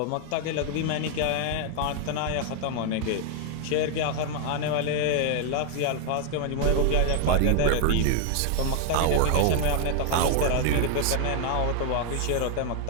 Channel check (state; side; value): different; both; correlation 0.00